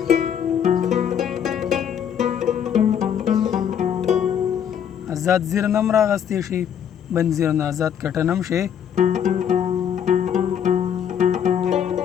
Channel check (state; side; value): quieter; right; 8.7 dB